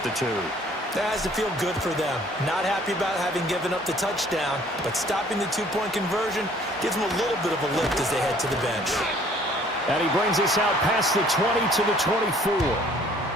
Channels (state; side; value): normal; both; correlation 0.57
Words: the 2. That has to feel good for them. Not happy about having given up the touchdown, but stopping the two-point conversion gives them a little bit of a lift as they head to the bench. And he brings us out past the 20 to the 24.